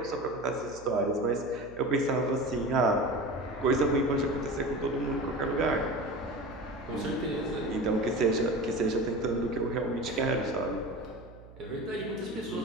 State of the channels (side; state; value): right; noise; hum, 20 dB below the sound